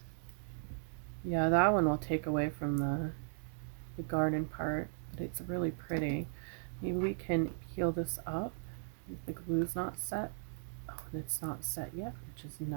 Yeah, that one will take away from the garden part, but it's really pretty. Maybe we can peel this up if the glue's not set. Oh, and it's not set yet, which is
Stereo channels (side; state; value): left; silent; digital silence